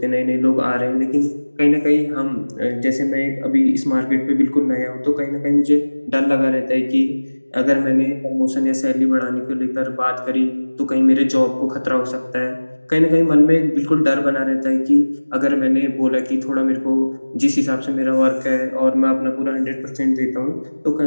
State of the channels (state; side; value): inverted; both; correlation -1.00